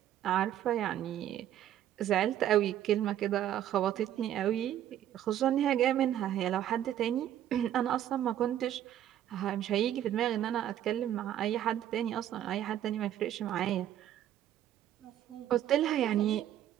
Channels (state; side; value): quieter; left; 11.5 dB